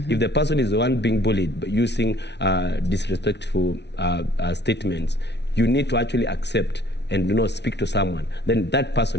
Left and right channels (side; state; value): right; late; 0.50 ms